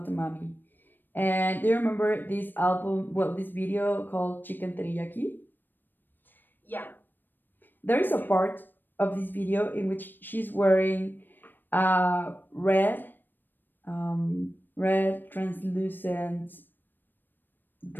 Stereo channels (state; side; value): late; right; 0.093 ms